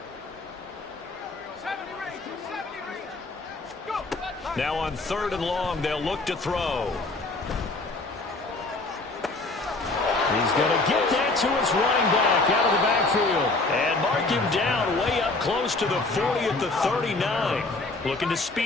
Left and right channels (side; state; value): right; quieter; 3.3 dB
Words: Now on 3rd and long, they'll look to throw. He's going to get that to his running back out of the backfield. And mark him down way up close to the 40 at the 39. Looking to